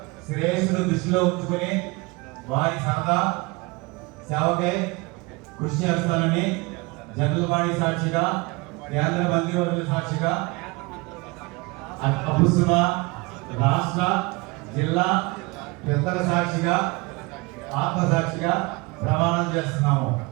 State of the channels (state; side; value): quieter; left; 25.5 dB